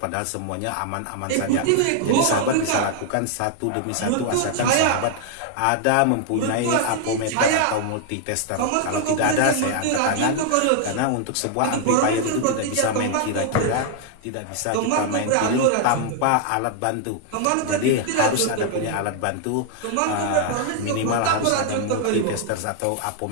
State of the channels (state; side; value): different; both; correlation 0.00